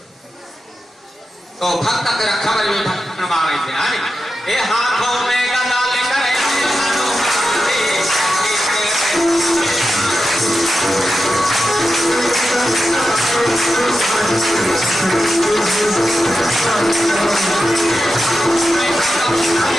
तो भक्त के रक्षा में भी भक्त मारे थे ये हाथों में गदा लेकर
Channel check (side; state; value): both; normal; correlation 0.90